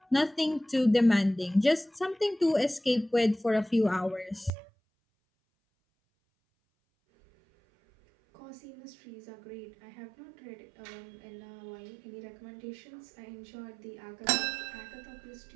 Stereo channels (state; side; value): drops out; left; at 4.5 s